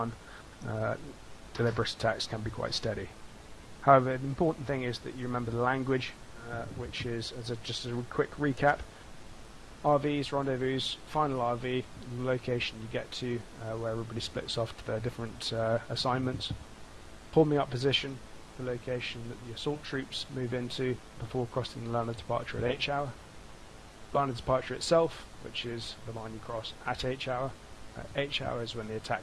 Deliberate attacks can be quite steady. However, the important thing is that you remember the language, which is, just a quick recap, RVs, rendezvous, final RV, the location you get to where everybody splits off to their different assignments. Forming up position, the location that the assault troops move into before crossing the line of departure at H hour. Line of departure itself, which is the line you cross at H hour. H hour is when the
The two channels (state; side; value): identical; both; correlation 1.00